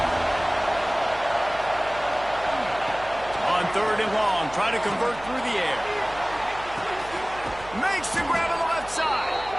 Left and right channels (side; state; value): right; noise; hum, 18 dB below the sound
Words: On 3rd and long, trying to convert through the air. Makes the grab on the left side.